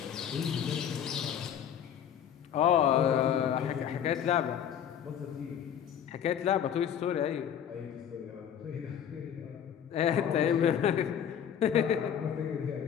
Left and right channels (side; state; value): right; quieter; 9.0 dB